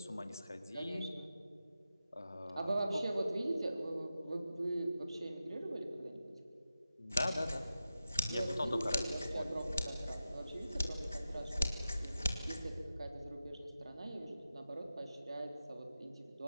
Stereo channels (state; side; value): inverted; both; correlation -0.91